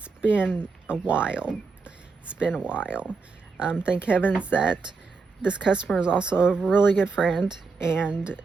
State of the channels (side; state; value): left; quieter; 4.5 dB